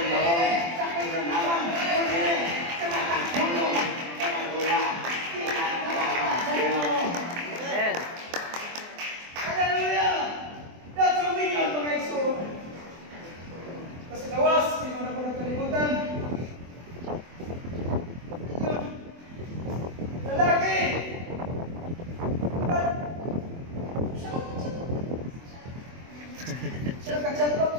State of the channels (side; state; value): left; late; 24 ms